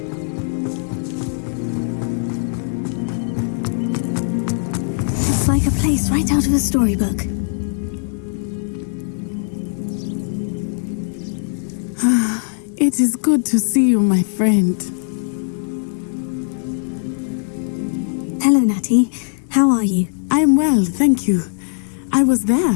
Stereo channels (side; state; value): right; silent; digital silence